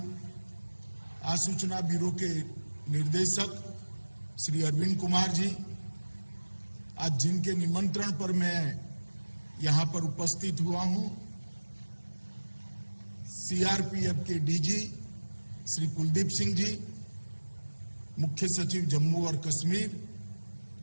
आसूचना ब्यूरो के निर्देशक श्री अरविंद कुमार जी, आज जिनके निमंत्रण पर मैं यहाँ पर उपस्थित हुआ हूँ, सीआरपीएफ के डीजी श्री कुलदीप सिंह जी, मुख्य सचिव जम्मू और कश्मीर,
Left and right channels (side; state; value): both; inverted; correlation -1.00